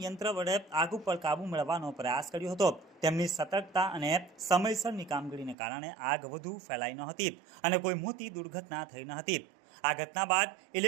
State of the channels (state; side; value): drops out; left; at 5.6 s